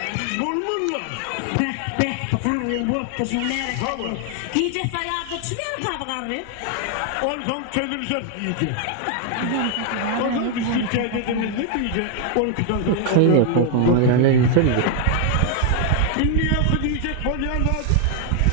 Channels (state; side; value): different; both; correlation 0.00